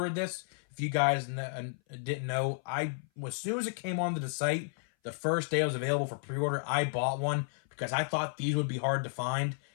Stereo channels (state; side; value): silent; right; 56 dB below the other